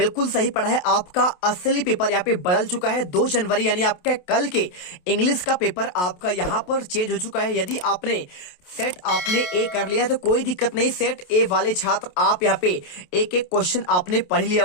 सही पढ़ा है। आपका असली पेपर यहाँ पे बदल चुका है। 2 जनवरी यानी आपके कल के इंग्लिश का पेपर आपका यहाँ पर चेंज हो चुका है। यदि आपने सेट आपने ए कर लिया है तो कोई दिक्कत नहीं। सेट ए वाले छात्र आप यहाँ पे एक एक क्वेश्चन आपने पढ़ लिया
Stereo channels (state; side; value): late; right; 28 ms